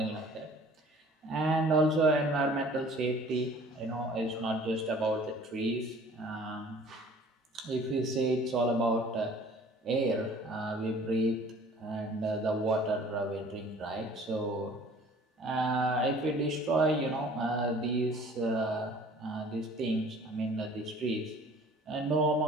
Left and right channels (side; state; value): both; normal; correlation 0.50